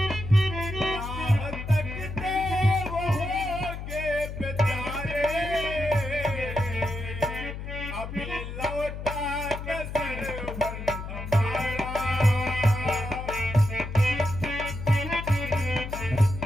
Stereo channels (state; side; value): noise; left; hum, 8 dB below the sound